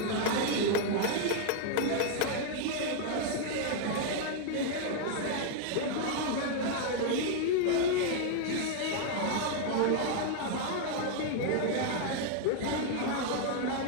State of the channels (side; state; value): both; different; correlation 0.00